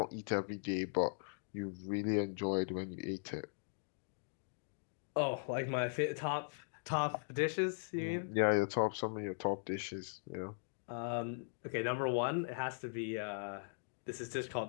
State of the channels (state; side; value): silent; right; digital silence